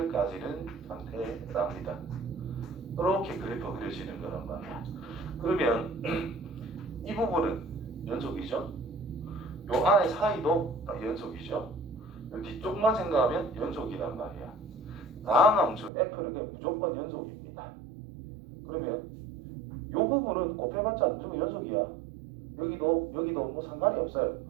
가지는 상태랍니다. 이렇게 그래프 그려지는 거란 말이야. 그러면 이 부분은 연속이죠. 요 안에 사이도 연속이죠. 요 뒤쪽만 생각하면 연속이란 말이야. 다음 함수 f는 그냥 무조건 연속입니다. 그러면 요 부분은 곱해봤자 무조건 연속이야. 여기도 뭐 상관이 없어요.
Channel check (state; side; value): drops out; left; at 15.9 s